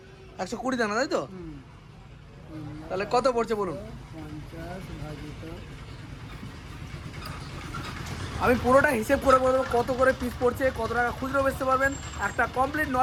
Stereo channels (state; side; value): identical; both; correlation 1.00